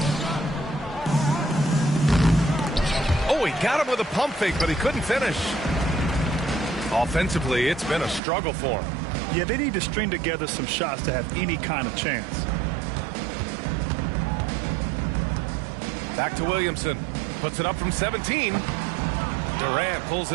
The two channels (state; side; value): drops out; left; at 8.2 s